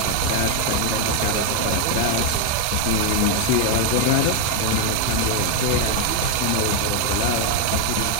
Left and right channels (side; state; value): both; different; correlation 0.01